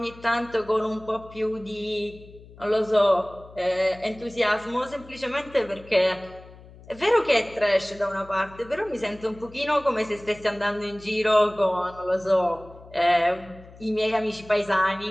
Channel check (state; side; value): noise; left; hum, 21 dB below the sound